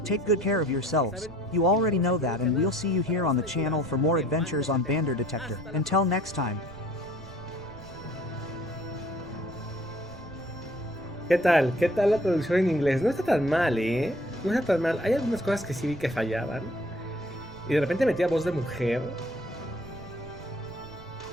take good care of yourselves. You already know that, and we'll see you here on the channel for more adventures on Metal Detector. Until next time. ¿Qué tal? ¿Qué tal la traducción en inglés? No está tan mal, ¿eh? No está tan mal. Hay algunas cosas que sí vi que fallaban. Y de repente metía voz de mujer.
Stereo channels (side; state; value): right; noise; rumble, 19 dB below the sound